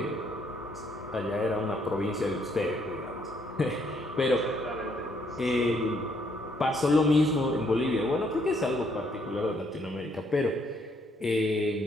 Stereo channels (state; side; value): normal; both; correlation 0.70